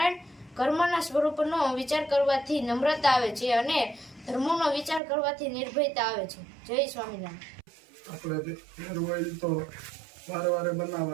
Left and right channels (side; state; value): left; drops out; at 5.0 s